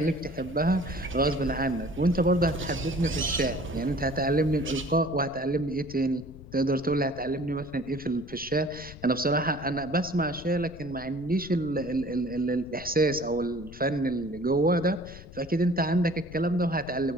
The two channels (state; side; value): noise; left; rumble, 17 dB below the sound